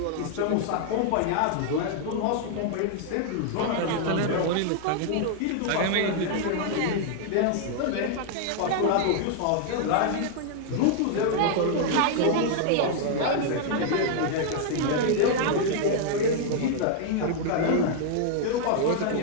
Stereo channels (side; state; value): both; different; correlation 0.00